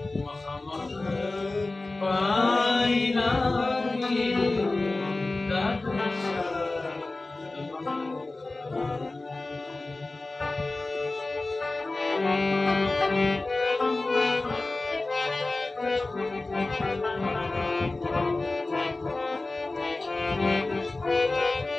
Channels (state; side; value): quieter; right; 3.1 dB